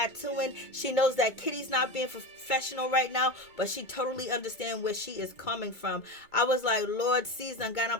She knows that Kitty's not being professional right now, but she totally understands where she is coming from. I was like, Lord, Caesar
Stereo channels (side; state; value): right; late; 2.3 ms